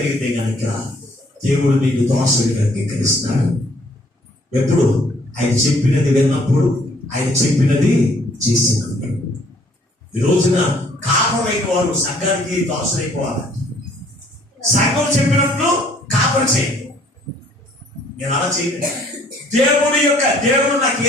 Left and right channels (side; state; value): both; normal; correlation 0.61